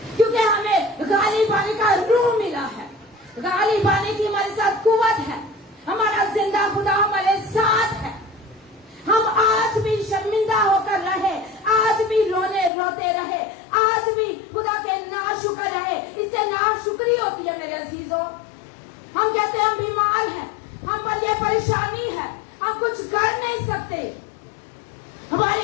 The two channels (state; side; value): drops out; right; at 12.7 s